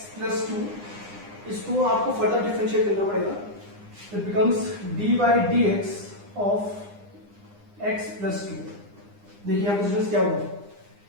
प्लस 2, इसको आपको फर्दर डिफरेंशिएट करना पड़ेगा। It becomes dy dx of x plus 2। देखिए यहाँ पर स्टूडेंट्स क्या हुआ,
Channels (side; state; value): left; late; 9.8 ms